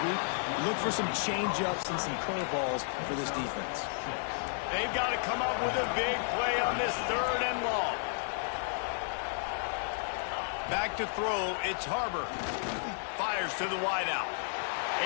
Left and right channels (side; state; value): right; silent; digital silence